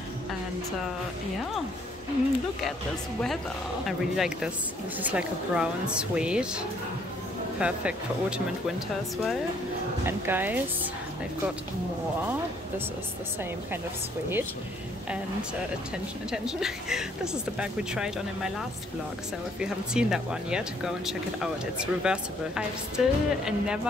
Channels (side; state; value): both; normal; correlation 0.65